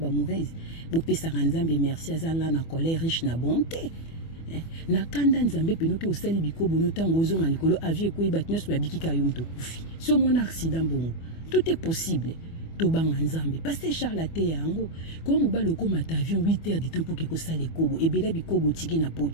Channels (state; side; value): late; right; 24 ms